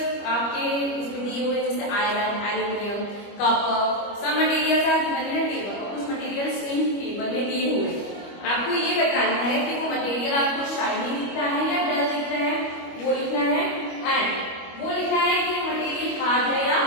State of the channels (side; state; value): right; late; 25 ms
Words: आपके इसमें दिए हुए जैसे iron, aluminium, copper, some materials are given in a table और कुछ मटेरियल्स इन टेबल में दिए हुए हैं। आपको ये बताना है कि वो मटेरियल आपको शाइनी दिखता है या डल दिखता है, वो लिखना है। एंड वो लिखना है कि मटेरियल हार्ड है या